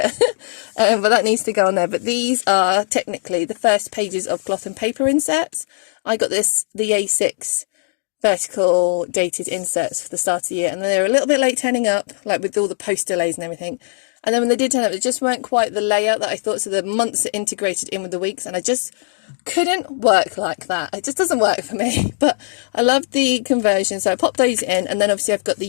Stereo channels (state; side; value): silent; right; digital silence